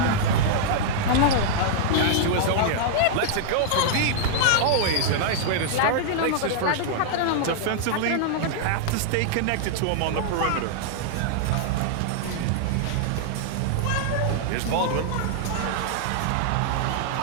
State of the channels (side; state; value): both; different; correlation -0.01